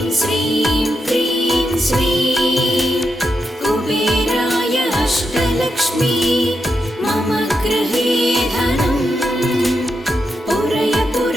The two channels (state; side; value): normal; both; correlation 0.85